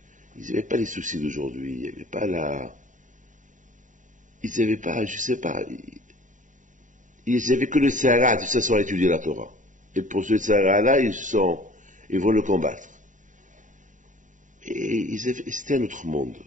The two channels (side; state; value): left; late; 0.37 ms